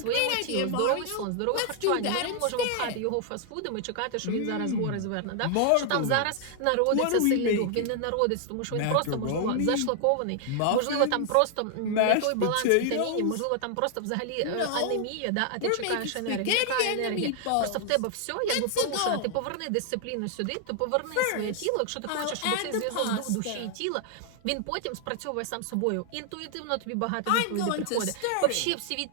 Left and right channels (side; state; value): both; different; correlation 0.00